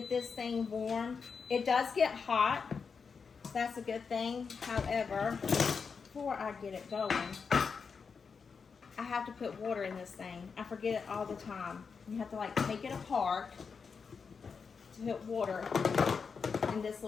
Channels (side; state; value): right; quieter; 5.6 dB